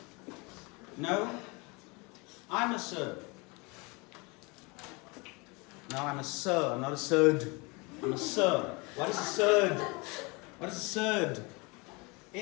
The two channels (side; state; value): right; quieter; 27.9 dB